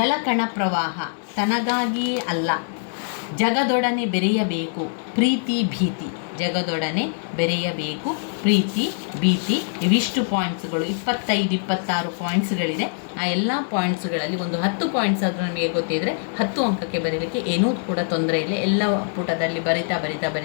ಪ್ರವಾಹ, ತನಗಾಗಿಯೇ ಅಲ್ಲ, ಜಗದೊಡನೆ ಬೆರೆಯಬೇಕು, ಪ್ರೀತಿ ಭೀತಿ. ಇವಿಷ್ಟು ಪಾಯಿಂಟ್ಸ್ಗಳು, 25-26 ಪಾಯಿಂಟ್ಸ್ಗಳಿದೆ. ಆ ಎಲ್ಲ ಪಾಯಿಂಟ್ಸ್ಗಳಲ್ಲಿ ಒಂದು 10 ಪಾಯಿಂಟ್ಸ್ ಆದರೂ ನಮಗೆ ಗೊತ್ತಿದ್ದರೆ 10 ಅಂಕಕ್ಕೆ ಬರೀಲಿಕ್ಕೆ ಏನೂ ಕೂಡ ತೊಂದರೆ ಇಲ್ಲ. ಎಲ್ಲ ಪುಟದಲ್ಲಿ ಬರಿತಾ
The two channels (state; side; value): silent; right; 60 dB below the other